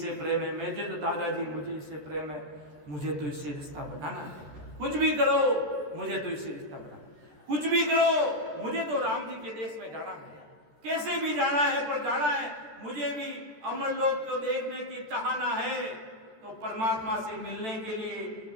प्रेम है, मुझे तो दादाजी मुझे इससे प्रेम है, मुझे तो इससे रिश्ता बनाना है। कुछ भी करो मुझे तो इससे रिश्ता बनाना, कुछ भी करो मुझे तो राम जी के देश में जाना है, कैसे भी जाना है पर जाना है। मुझे भी अमर लोक को देखने की चाहना है, तो परमात्मा से मिलने के लिए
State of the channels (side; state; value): left; late; 14 ms